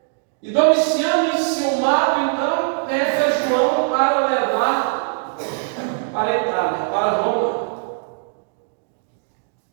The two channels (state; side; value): silent; left; digital silence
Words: E Domiciano, enciumado, então pega João para levar para a Itália, para Roma.